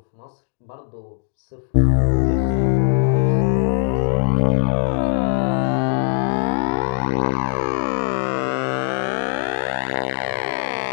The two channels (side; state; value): right; silent; digital silence